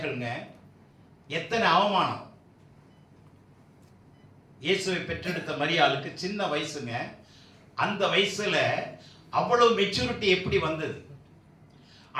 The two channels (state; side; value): identical; both; correlation 1.00